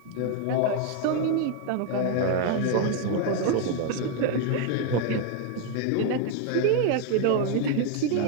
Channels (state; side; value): different; both; correlation 0.01